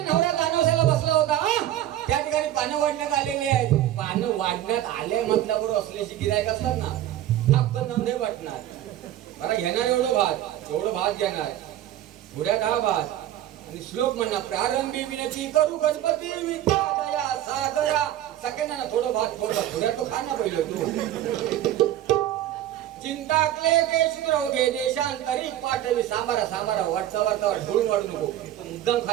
नवरा दानवसाला बसला होता त्या ठिकाणी पानं वाढण्यात आलेली आहेत. पानं वाढण्यात आले म्हटल्याबरोबर असल्याची गिरायक असतात ना, आपण नंदे वाटणार. मला घेणार एवढं भात घेणार, पुढ्यात हा भात आणि श्लोक म्हणणार, प्रारंभी विनती करू गणपती विद्या दया सागरा. सगळ्यांना थोडं भात पुढ्या तो खा ना पहिलं तू. चिंता क्लेश रोगे देशांतरी पाठवी सांबारा वाटता ढोळून वाढू नको. मुद्दाम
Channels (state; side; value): quieter; left; 12.6 dB